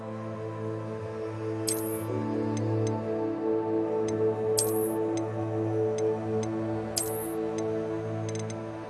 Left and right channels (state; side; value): identical; both; correlation 1.00